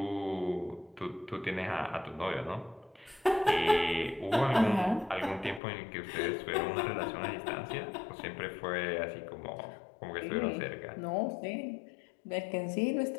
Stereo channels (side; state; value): right; drops out; at 5.6 s